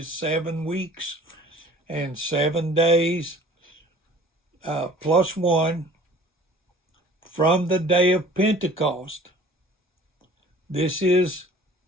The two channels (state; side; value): normal; both; correlation 0.49